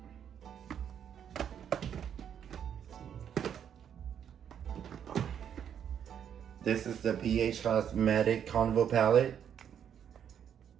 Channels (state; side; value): quieter; left; 8.7 dB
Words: This is the BH Cosmetic Carnival palette.